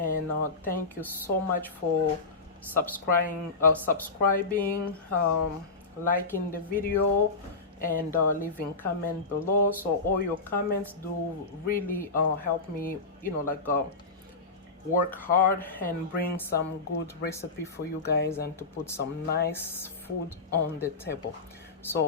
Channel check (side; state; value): right; quieter; 4.0 dB